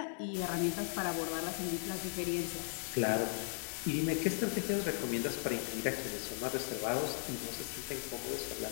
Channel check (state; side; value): silent; right; 53 dB below the other